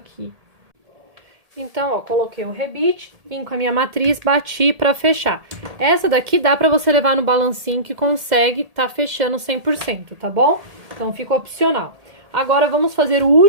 Então, ó, coloquei o rebite, vim com a minha matriz, bati pra fechar. Essa daqui dá pra você levar no balancinho que consegue tá fechando 100%, tá bom? Então, fica opcional. Agora, vamos fazer o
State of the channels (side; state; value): left; late; 1.8 ms